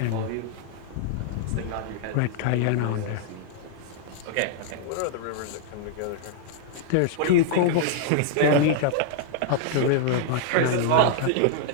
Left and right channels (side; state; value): both; different; correlation -0.01